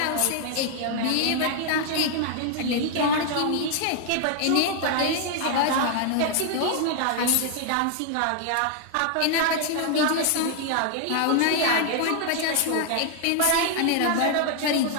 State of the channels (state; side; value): different; both; correlation 0.00